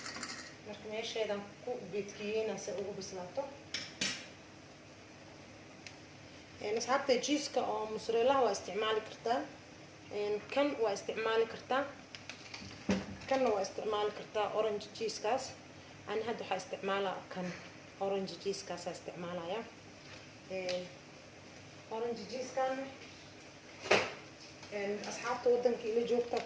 لكن إيش هذا كو بيتكيين أسويه بسلاطة أصحابتي جيسكا أو موزاريلا waa isticmaali kartaa kan waa isticmaali kartaa kan waa isticmaali kartaa orange cheese kaas aan hadda waxa isticmaalaa kan orange cheese kaas isticmaalaya orange cheese kan asxaabta wadanka ila joogta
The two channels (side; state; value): both; identical; correlation 1.00